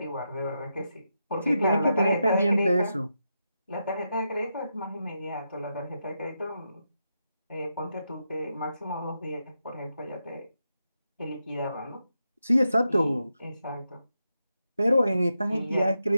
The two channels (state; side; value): inverted; both; correlation -0.86